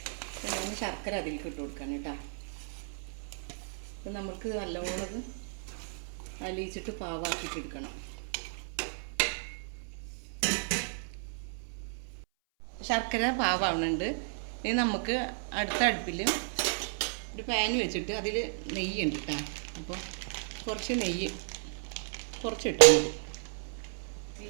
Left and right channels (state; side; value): silent; left; 55 dB below the other